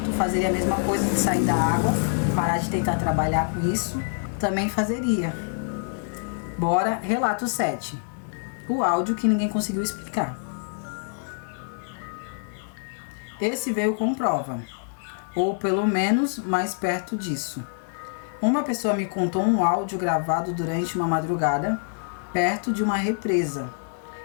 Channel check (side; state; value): right; silent; digital silence